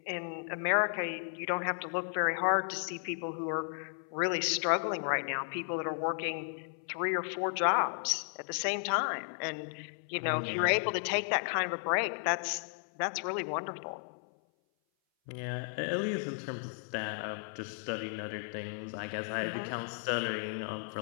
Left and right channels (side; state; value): right; silent; 55 dB below the other